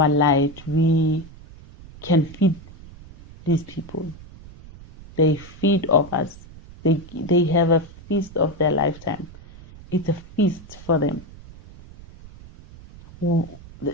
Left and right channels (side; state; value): right; noise; rumble, 19 dB below the sound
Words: light, we can feed these people. They feed off us. They have a feast of their lifetime. It's a feast for them.